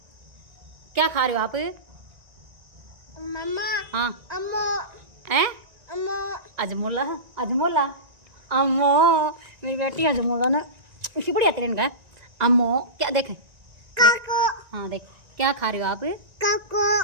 क्या खा रहे हो आप मम्मा हाँ अम्मो हैं अम्मो अजमोला अजमोला अम्मो मेरी बेटी अजमोला ना इसी बढ़िया तेरे का अम्मो क्या देख काको हाँ देख क्या खा रहे हो आप काको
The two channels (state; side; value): late; left; 1.9 ms